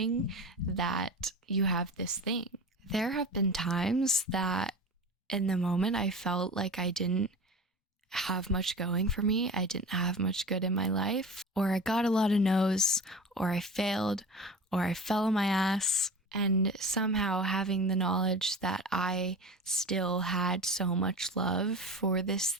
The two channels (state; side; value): normal; both; correlation 0.33